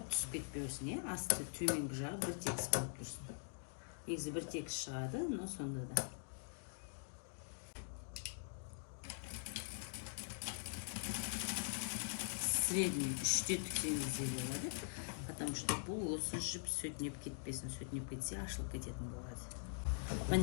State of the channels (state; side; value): silent; right; digital silence